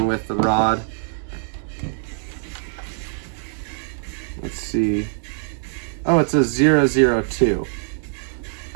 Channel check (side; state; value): left; silent; 64 dB below the other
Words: with the rod. Let's see. Oh, it's a 002.